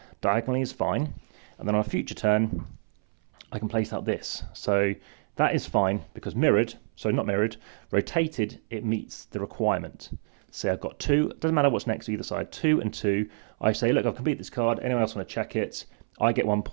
diagonally is fine. And then on a future turn, I can place out this. So that is fine because mirrored, so not mirrored, rotated, it meets the requirement. So I've got 2, it doesn't matter what's next to either side, 2 and 2. I say, look, I've completed this card. Anyone else want to check it? I get 1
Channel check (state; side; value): silent; left; 59 dB below the other